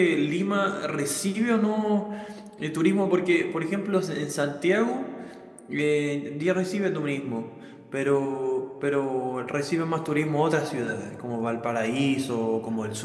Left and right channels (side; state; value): both; identical; correlation 1.00